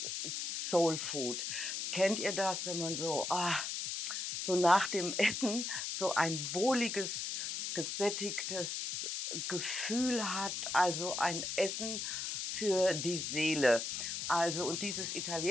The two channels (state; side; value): noise; left; hiss, 3 dB below the sound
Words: Soul Food. Kennt ihr das, wenn man so nach dem Essen so ein wohliges, gesättigtes Gefühl hat, also ein Essen für die Seele. Also und dieses